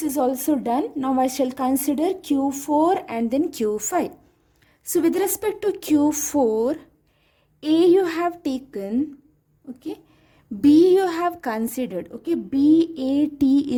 is also done. Now I shall consider Q4 and then Q5. So with respect to Q4, A you have taken, okay, B you have considered, okay, B, A, T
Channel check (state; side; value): identical; both; correlation 1.00